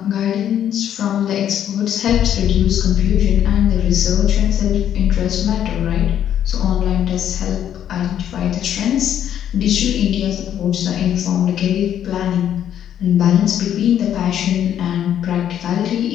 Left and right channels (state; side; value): quieter; right; 10.1 dB